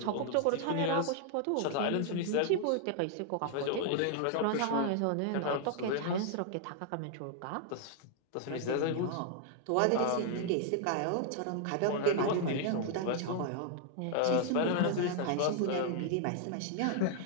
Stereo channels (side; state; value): both; different; correlation 0.00